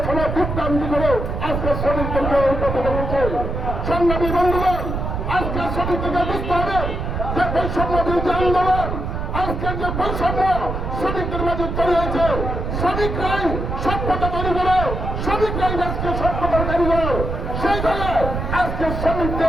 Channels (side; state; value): right; noise; rumble, 3 dB below the sound